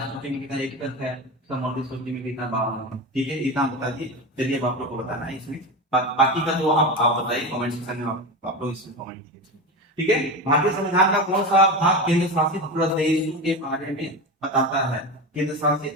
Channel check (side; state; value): both; normal; correlation 0.22